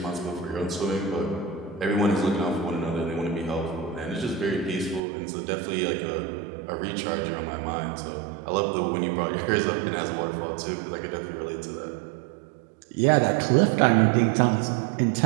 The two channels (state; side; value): drops out; left; at 5.0 s